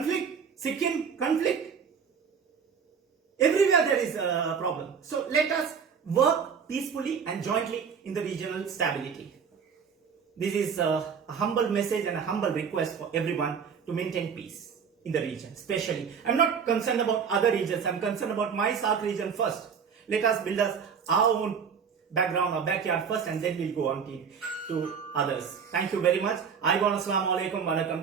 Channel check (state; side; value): quieter; left; 6.7 dB